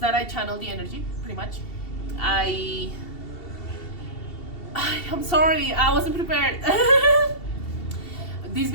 that I channel the energy, pretty much. I'm sorry, I wasn't prepared. This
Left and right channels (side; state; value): right; late; 2.7 ms